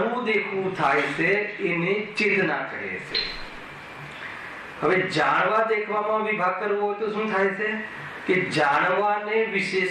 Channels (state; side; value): identical; both; correlation 1.00